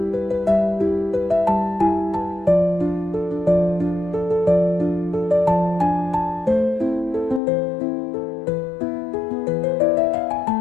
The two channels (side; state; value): right; drops out; at 7.4 s